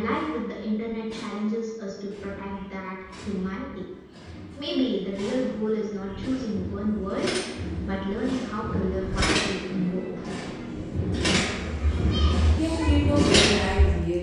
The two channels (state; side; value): identical; both; correlation 1.00